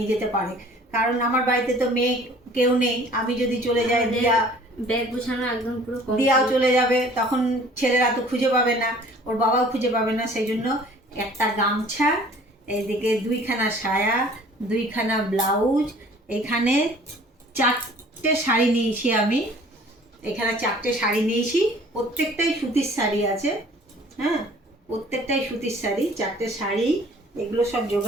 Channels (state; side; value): normal; both; correlation 0.51